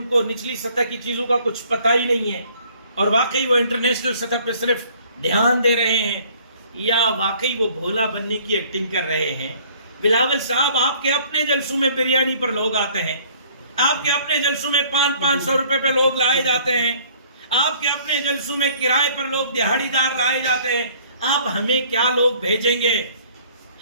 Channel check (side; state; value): both; inverted; correlation -0.56